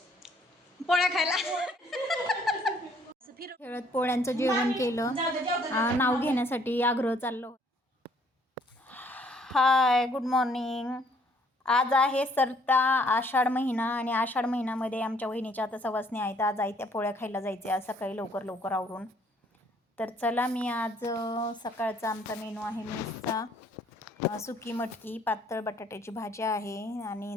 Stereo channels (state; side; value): normal; both; correlation 0.63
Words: पोळ्या खायला खेळत पोळ्यांचं जेवण केलं. नाव घेण्यासाठी आग्रह चाललो. हाय, गुड मॉर्निंग. आज आहे सरता आषाढ महिना आणि आषाढ महिन्यामध्ये आमच्या वहिनीच्या आता सवासणी आहेत. आज आई त्या पोळ्या खायला जायचे आज सकाळी लवकर लवकर आवरून. तर चला, मी आज सकाळचा आमचा मेनू आहे मेसचा सुकी मटकी, पातळ बटाट्याची भाजी आहे आणि